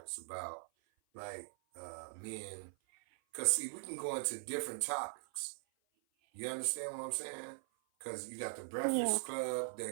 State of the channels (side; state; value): left; silent; 51 dB below the other